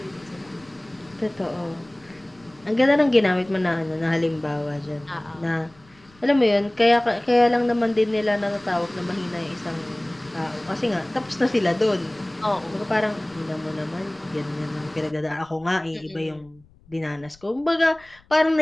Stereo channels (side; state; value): left; noise; rumble, 28 dB below the sound